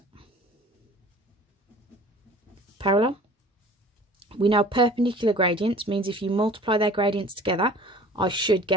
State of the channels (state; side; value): normal; both; correlation 0.46